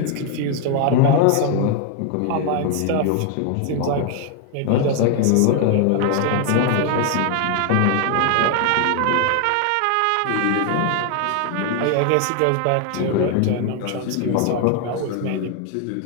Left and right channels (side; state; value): both; different; correlation 0.00